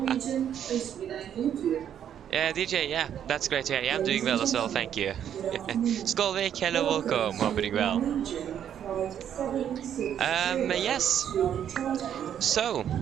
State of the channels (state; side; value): quieter; left; 9.5 dB